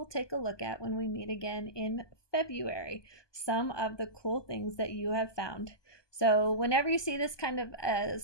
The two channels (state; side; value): late; right; 1.2 ms